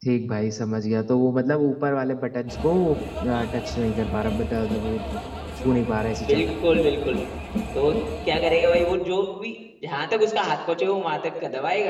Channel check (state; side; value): identical; both; correlation 1.00